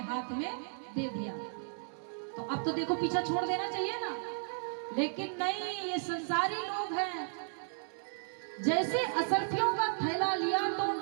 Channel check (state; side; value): silent; left; digital silence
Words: में दे दिया। तो अब तो देखो पीछा छोड़ देना चाहिए ना, लेकिन नहीं, ये संसारी लोग हैं। जैसे असरफियों का थैला लिया तो